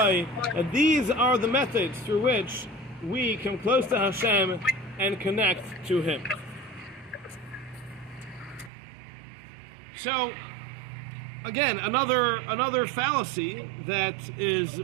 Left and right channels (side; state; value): left; drops out; at 8.7 s